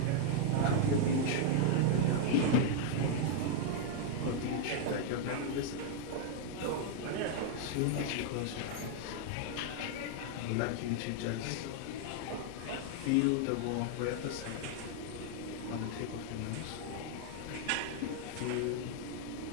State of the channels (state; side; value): different; both; correlation 0.00